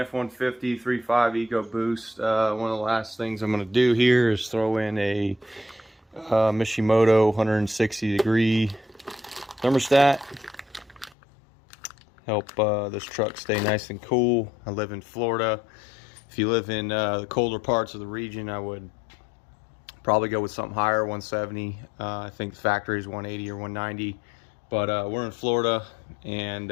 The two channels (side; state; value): right; drops out; at 11.2 s